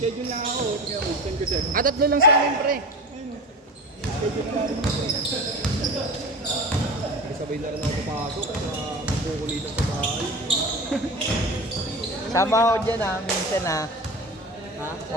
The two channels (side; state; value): both; normal; correlation 0.30